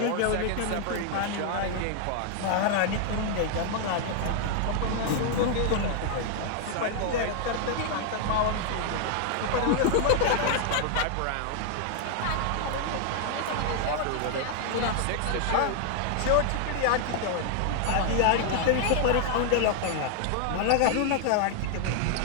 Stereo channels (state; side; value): different; both; correlation 0.00